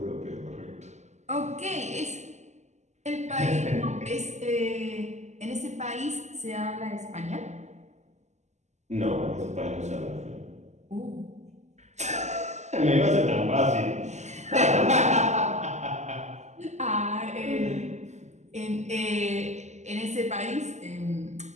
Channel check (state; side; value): late; left; 0.33 ms